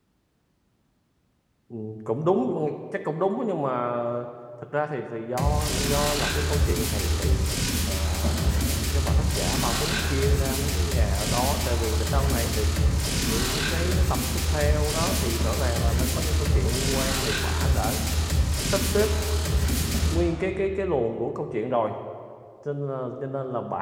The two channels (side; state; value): both; identical; correlation 1.00